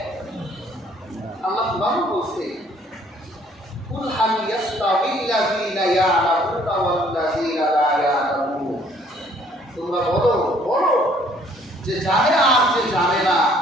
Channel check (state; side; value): normal; both; correlation 0.61